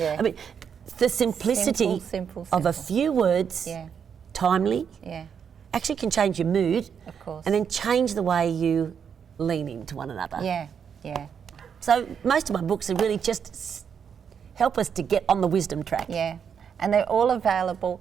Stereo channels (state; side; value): quieter; left; 7.3 dB